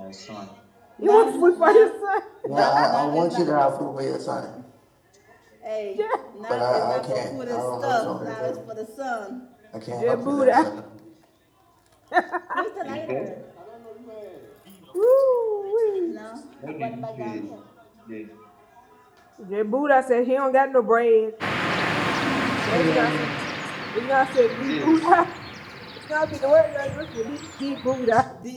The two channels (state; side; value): identical; both; correlation 1.00